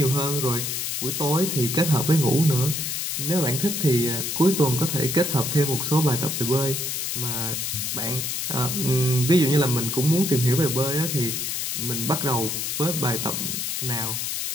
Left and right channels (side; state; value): left; noise; hiss, 2 dB below the sound